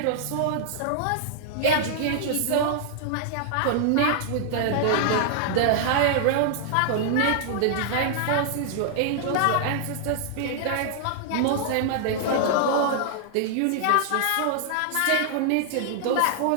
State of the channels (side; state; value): both; different; correlation -0.01